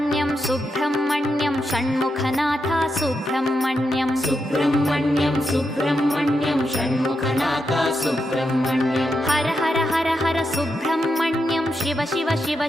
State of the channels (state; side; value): normal; both; correlation 0.85